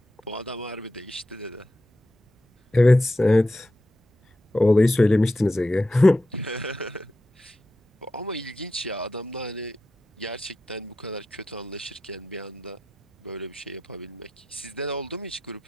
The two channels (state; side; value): normal; both; correlation 0.89